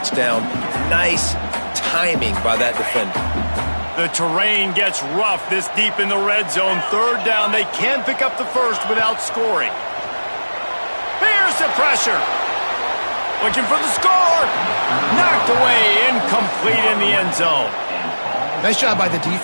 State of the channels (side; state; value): both; inverted; correlation -1.00